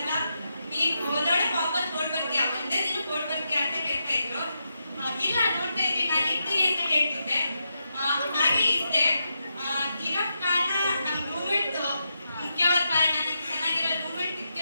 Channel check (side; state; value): both; inverted; correlation -0.85